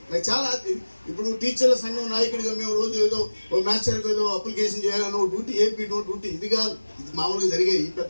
నాకు చాలా ఇప్పుడు టీచర్ల సంఘం నాయకుడిగా మేము రోజు ఏదో ఓ మాస్టర్కి ఏదో అప్లికేషన్ చేయాలనో డ్యూటీ ఏపీ నో డ్యూటీ ఇది కాదు. ఇది మామూలుగా జరిగాయి ఈ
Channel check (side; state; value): both; inverted; correlation -1.00